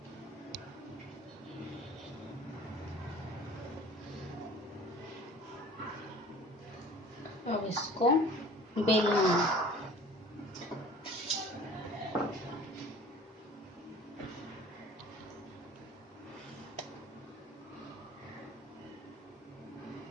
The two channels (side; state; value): both; normal; correlation 0.46